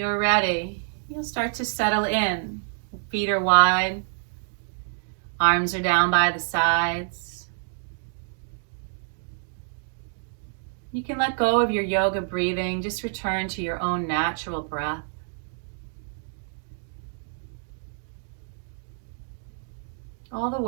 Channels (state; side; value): silent; left; digital silence